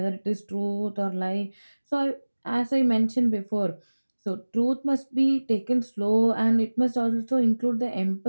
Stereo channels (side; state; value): both; inverted; correlation -1.00